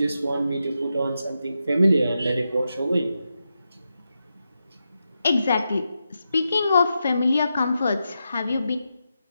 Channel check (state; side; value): inverted; both; correlation -0.87